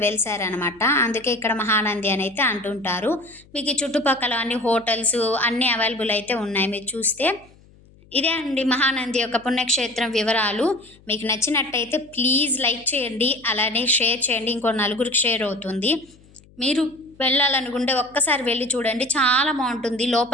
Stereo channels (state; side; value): noise; left; hum, 27 dB below the sound